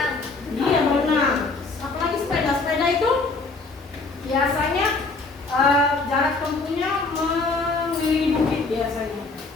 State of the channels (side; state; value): right; quieter; 3.8 dB